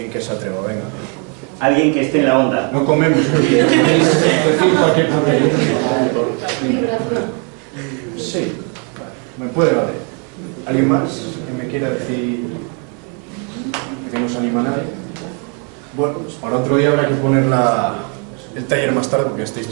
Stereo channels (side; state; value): left; quieter; 37.5 dB